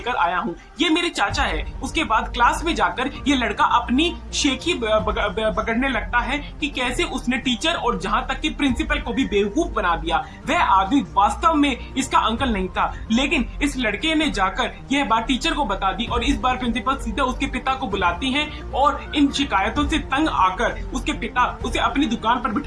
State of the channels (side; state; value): both; identical; correlation 1.00